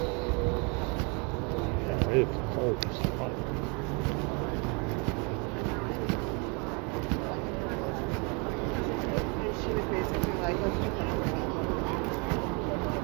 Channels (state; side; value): quieter; left; 32.8 dB